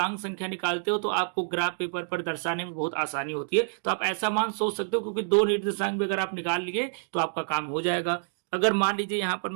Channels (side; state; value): left; silent; digital silence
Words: संख्या निकालते हो तो आपको ग्राफ पेपर पर दर्शाने में बहुत आसानी होती है। तो आप ऐसा मान सोच सकते हो, क्योंकि दो निर्देशांक भी अगर आप निकाल लिए तो आपका काम हो जाएगा। अगर मान लीजिए यहाँ पर